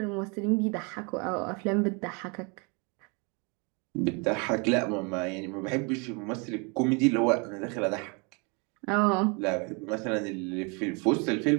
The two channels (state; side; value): quieter; left; 32.0 dB